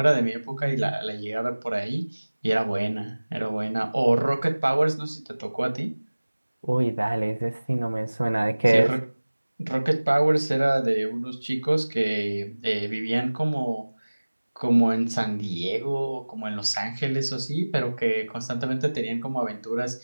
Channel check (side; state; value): both; inverted; correlation -1.00